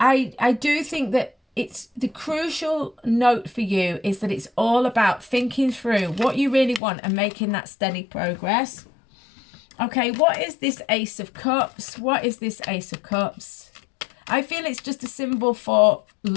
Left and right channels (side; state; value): right; drops out; at 6.8 s